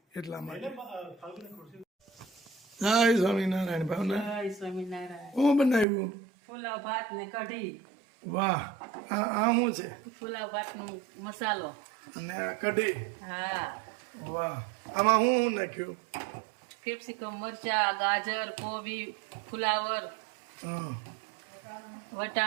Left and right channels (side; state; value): left; drops out; at 5.9 s